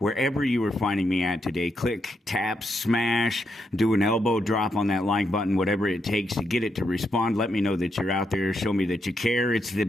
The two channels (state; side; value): normal; both; correlation 0.81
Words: you were finding me at today, click, tap, smash, do an elbow drop on that like button, whatever it takes to get it to respond. Let me know that you're out there. Show me that you care. It's the